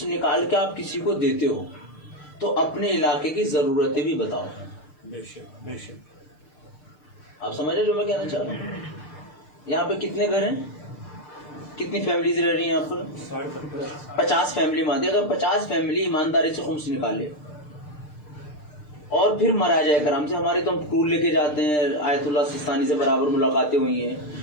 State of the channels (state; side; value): late; right; 6.7 ms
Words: نکال کے آپ کسی کو دیتے ہو تو اپنے علاقے کی ضرورتیں بھی بتاؤ. آپ سمجھ رہے جو میں کہنا چاہ رہا ہوں. یہاں پہ کتنے گھر ہیں, کتنی فیملیز رہ رہی ہیں یہاں پر؟ 50 فیملی مانتے. اگر 50 فیملی ایمانداری سے خمس نکالے اور پھر مراجع کرام سے, ہماری تو ہم ٹور لے کے جاتے ہیں, آیت اللہ سستانی سے برابر ملاقاتیں ہوئی ہیں,